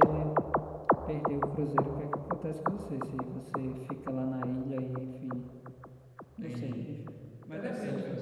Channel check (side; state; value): both; identical; correlation 1.00